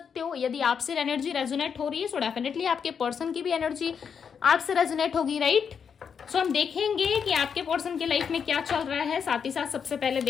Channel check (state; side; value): quieter; right; 6.8 dB